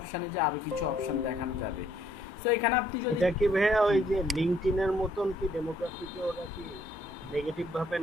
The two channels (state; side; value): normal; both; correlation 0.66